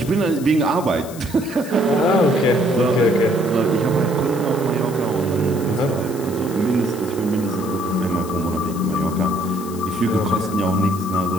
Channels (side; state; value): left; noise; hiss, 16 dB below the sound